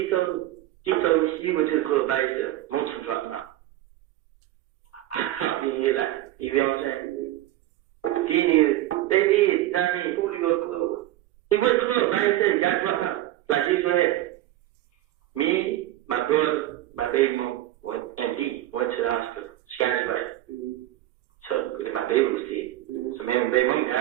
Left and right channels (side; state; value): left; quieter; 14.5 dB